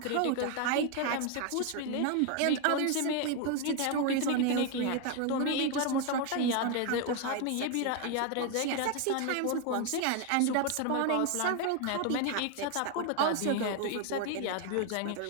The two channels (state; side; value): different; both; correlation 0.01